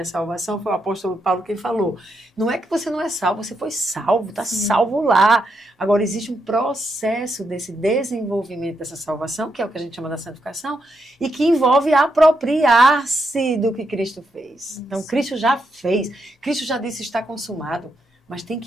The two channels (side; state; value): both; normal; correlation 0.81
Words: salvação, foi o apóstolo Paulo quem falou. Não é que você não é salvo, você foi salvo, está salvo lá. Agora, existe um processo desse desenvolvimento dessa salvação, que é o que a gente chama da santificação, e que envolve apropriar-se do que Cristo fez. Então, Cristo já fez, Cristo já disse está consumado. Mas tem